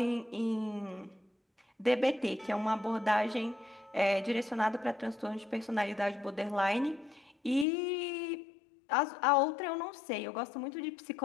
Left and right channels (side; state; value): right; drops out; at 7.7 s